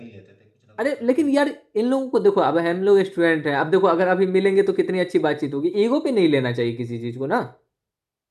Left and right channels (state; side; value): identical; both; correlation 1.00